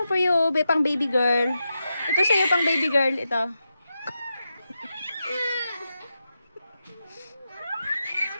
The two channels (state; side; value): inverted; both; correlation -0.88